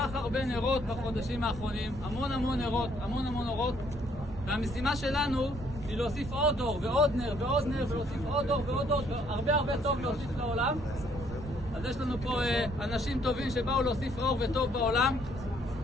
הרבה נרות בחודשים האחרונים, המון נרות, והמשימה שלנו היא להוסיף עוד דור ועוד נר ועוד נר, ולהוסיף עוד דור ועוד דור, הרבה טוב להוסיף לעולם. אז יש לנו פה אנשים טובים שבאו להוסיף אור וטוב בעולם,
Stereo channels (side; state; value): right; noise; rumble, 11 dB below the sound